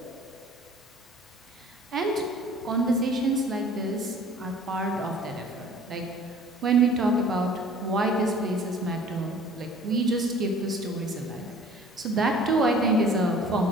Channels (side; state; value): both; normal; correlation 0.49